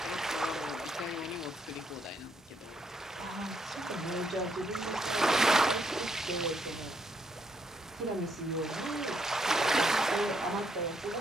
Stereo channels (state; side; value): normal; both; correlation 0.74